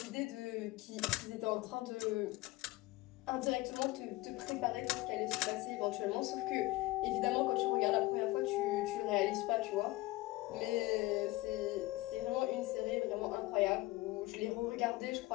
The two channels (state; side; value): quieter; right; 19.7 dB